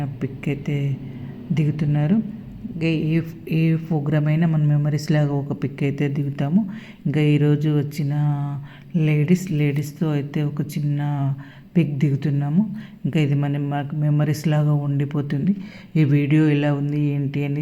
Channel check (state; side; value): identical; both; correlation 1.00